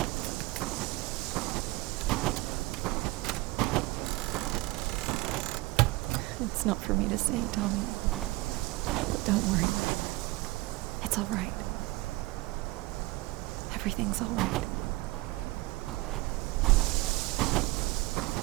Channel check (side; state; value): left; quieter; 21.4 dB